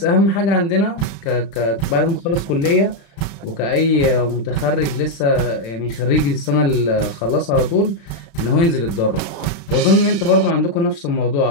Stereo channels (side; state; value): right; late; 35 ms